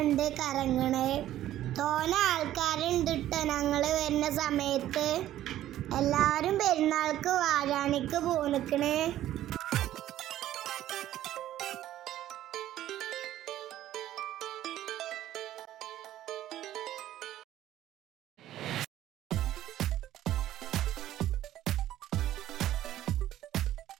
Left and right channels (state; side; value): quieter; left; 13.0 dB